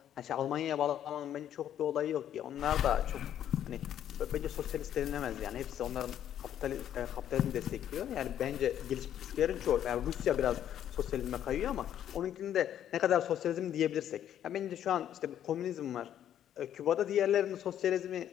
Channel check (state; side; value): quieter; right; 10.5 dB